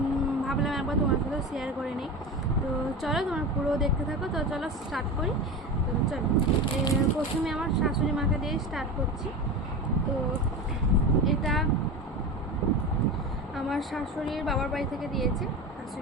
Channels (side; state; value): both; normal; correlation 0.26